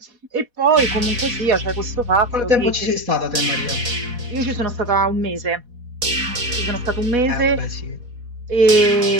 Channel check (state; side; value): late; left; 4.1 ms